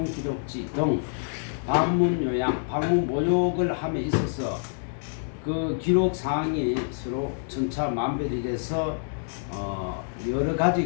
기록지 등 방문 요양, 방문 모욕을 함에 있어서 그 기록 사항이 서로 천차만별이 돼서 여러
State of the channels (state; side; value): silent; right; digital silence